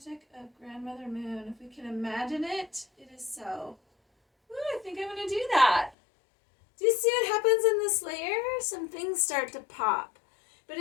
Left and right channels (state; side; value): drops out; right; at 6.0 s